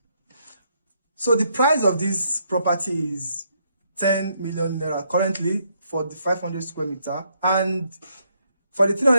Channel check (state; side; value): inverted; both; correlation -0.74